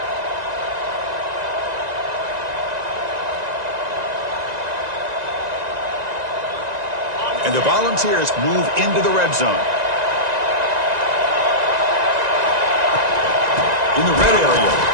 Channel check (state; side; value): late; left; 1.9 ms